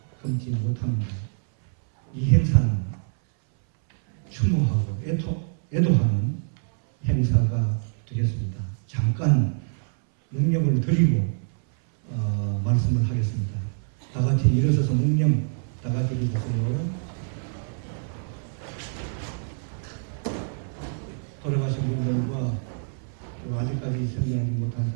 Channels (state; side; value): silent; left; 61 dB below the other